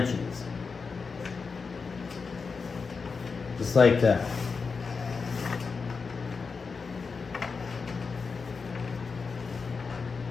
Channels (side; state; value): right; quieter; 4.9 dB